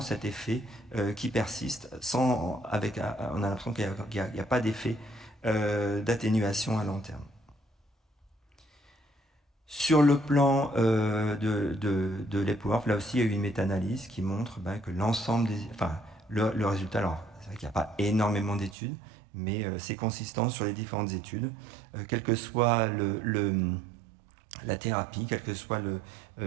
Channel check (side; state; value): left; drops out; at 18.8 s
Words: effet qui persiste. On a l'impression qu'il n'y a pas d'effet d'atténuation à long terme. Sur le plan de l'EPWORF, là aussi, il y a eu une méta-analyse qui montre que l'ensemble le résultat, alors c'est vrai qu'il n'y a pas énormément d'études, mais c'est consistant sur les différentes études, quelle que soit la thérapie, quel que soit